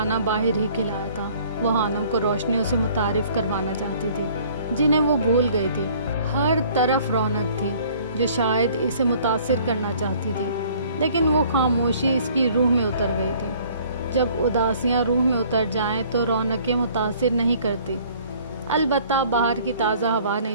باہر ہی کھلایا تھا۔ وہ خانم کو روشنیوں سے متعارف کروانا چاہتی تھی جنہیں وہ بھول گئی تھی۔ ہر طرف رونق تھی جو شاید اسے متاثر کرنا چاہتی تھی، لیکن وہ خاموشی اس کی روح میں اتر گئی تھی۔ جب اداسیاں روح میں اتر جائیں تو رونقیں متاثر نہیں کرتی۔ البتہ باہر کی تازہ ہوا نے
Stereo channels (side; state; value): both; inverted; correlation -0.55